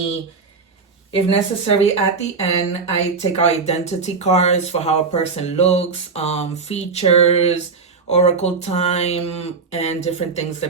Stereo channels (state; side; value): quieter; left; 4.7 dB